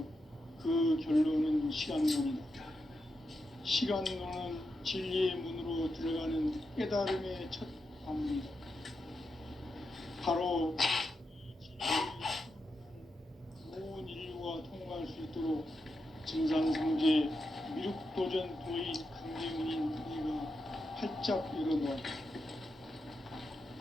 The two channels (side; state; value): both; normal; correlation 0.87